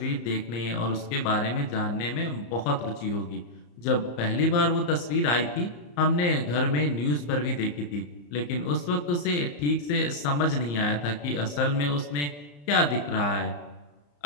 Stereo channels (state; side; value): late; right; 34 ms